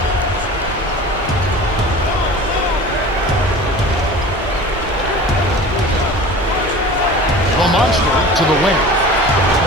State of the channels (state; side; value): normal; both; correlation 0.39